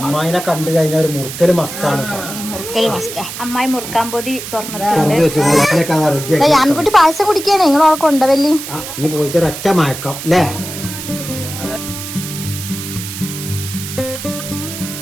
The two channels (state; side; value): noise; right; hiss, 9 dB below the sound